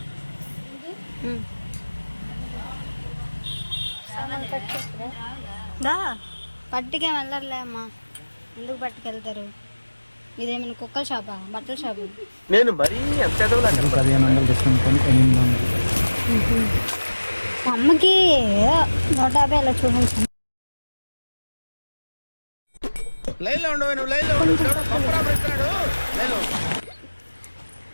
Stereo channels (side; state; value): both; inverted; correlation -1.00